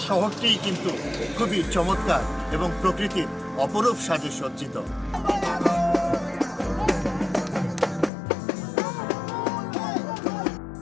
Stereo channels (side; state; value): right; drops out; at 8.1 s